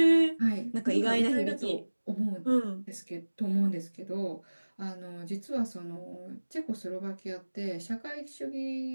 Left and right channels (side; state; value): both; inverted; correlation -1.00